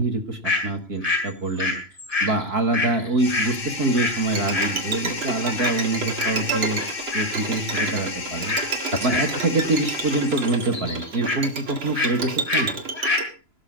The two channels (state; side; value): late; left; 3.0 ms